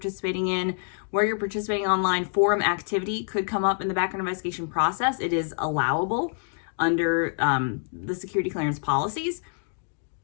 in, where you're participating online. Forum activity could come up in the background investigation process. It is allowable under the security clearance policies.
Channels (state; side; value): silent; right; digital silence